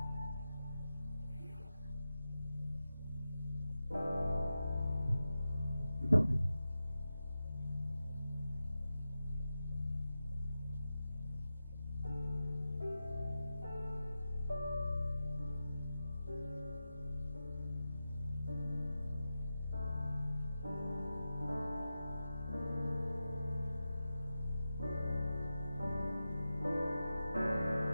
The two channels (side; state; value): both; inverted; correlation -0.92